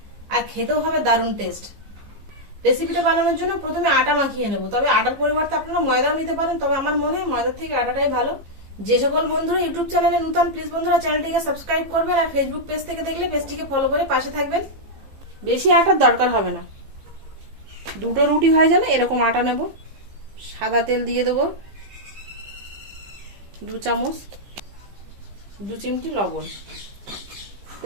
আর খেতেও হবে দারুণ টেস্ট। রেসিপিটা বানানোর জন্য প্রথমে আটা মাখিয়ে নেব, তবে আটার পরিবর্তে আপনারা ময়দাও নিতে পারেন, তবে আমার মনে হয় ময়দার থেকে আটাটাই ভালো। যে সকল বন্ধুরা ইউটিউব চ্যানেলে নতুন, প্লিজ বন্ধুরা চ্যানেলটিকে সাবস্ক্রাইব করবেন, আর ফেসবুক পেজ থেকে দেখলে পেজটিকে ফলো করে পাশে থাকবেন। বেশি আটার দরকার হবে না, দুটো রুটি হয়ে যাবে এরকম আটা নেব। সাদা তেল দিয়ে দেবো 2 চামচ, 2 চিমটি লবণ।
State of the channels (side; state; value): left; late; 15 ms